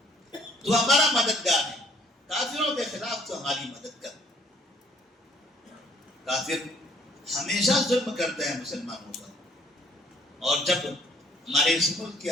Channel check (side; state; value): both; normal; correlation 0.61